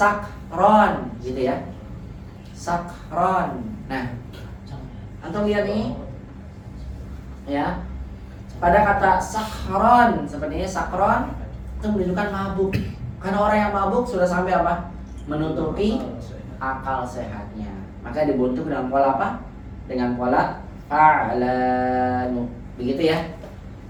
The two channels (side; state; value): both; identical; correlation 1.00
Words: gitu ya. Sakron. Nah, antum lihat nih. Ya. Pada kata sakron seperti ini sakron itu menunjukkan mabuk. Karena orang yang mabuk sudah sampai apa? Menutupi akal sehatnya. Maka dibentuk dengan pola apa? Dengan pola fa'lanu. Begitu ya.